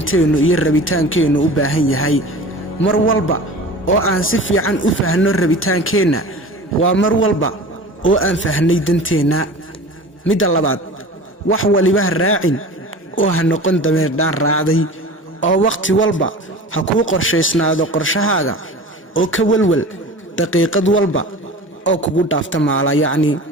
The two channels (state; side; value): normal; both; correlation 0.37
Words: iyo rabitaankeenu u baahan yahay mar walba oo aan si fiican u faahno rabitaankeena waa mar walba oo aan fahnay danteena midda labaad wax waliba raacin oo ha noqon dameer dhaan raacday oo waqti walba ha ku qorsheysnaado qorshahaaga oo ka walwal daqiiqad walba oo kugu dhaafta maala yacni